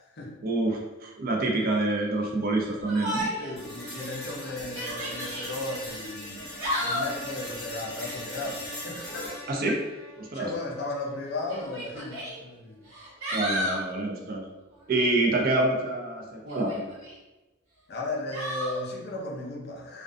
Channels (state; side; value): normal; both; correlation 0.28